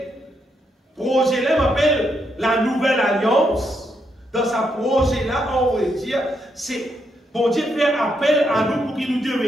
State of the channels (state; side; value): normal; both; correlation 0.79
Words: là m'appelle la nouvelle alliance. Dans sa projet là, on va dire, c'est bon Dieu fait appel à nous pour qu'il nous